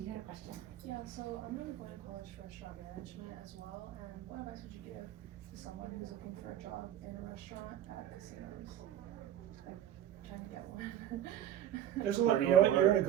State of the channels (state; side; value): quieter; left; 11.2 dB